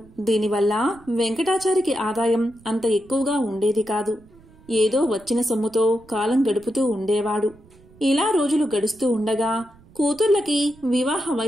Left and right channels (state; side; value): noise; right; rumble, 26 dB below the sound